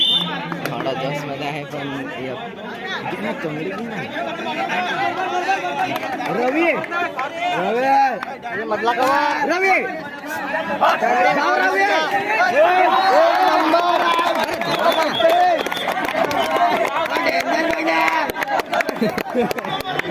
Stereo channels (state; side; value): identical; both; correlation 1.00